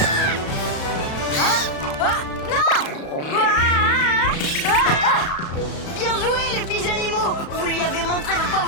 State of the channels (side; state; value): right; late; 35 ms